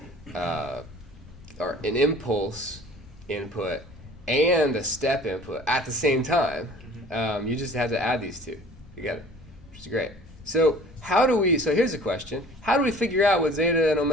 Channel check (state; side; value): normal; both; correlation 0.47